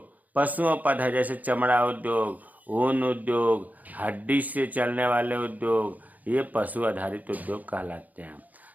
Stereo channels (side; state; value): left; late; 0.079 ms